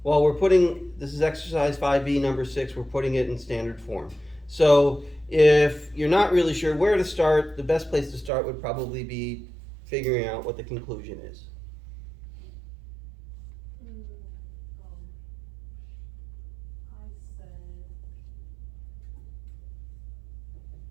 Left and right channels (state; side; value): drops out; left; at 8.3 s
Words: Well, we're putting, this is exercise 5B, number 6, we're putting it in standard form. So if you're not really sure where to start, the best place to start would probably be figuring out what the conclusion is. I